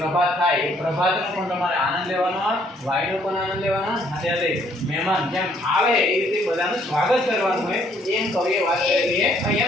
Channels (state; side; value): normal; both; correlation 0.65